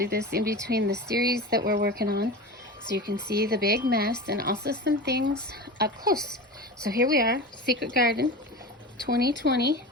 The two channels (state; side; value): normal; both; correlation 0.29